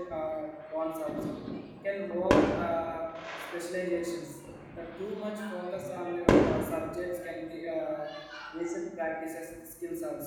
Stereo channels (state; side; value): identical; both; correlation 1.00